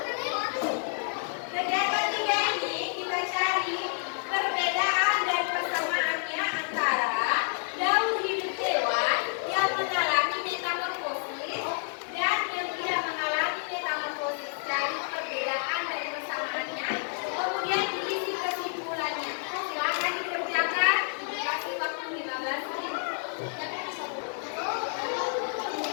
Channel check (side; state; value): right; silent; 58 dB below the other